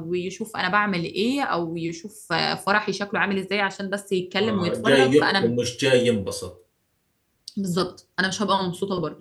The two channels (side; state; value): both; identical; correlation 1.00